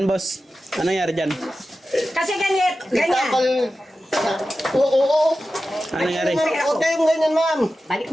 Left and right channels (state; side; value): normal; both; correlation 0.93